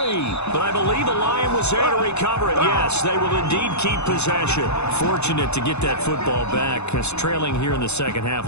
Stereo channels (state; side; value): late; right; 0.81 ms